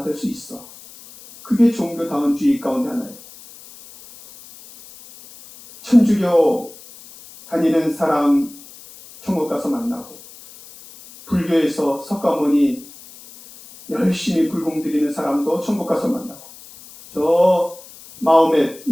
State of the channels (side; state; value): left; noise; hiss, 20 dB below the sound